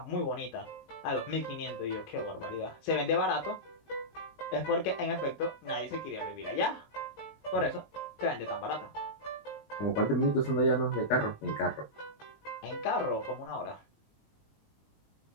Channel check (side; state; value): right; late; 19 ms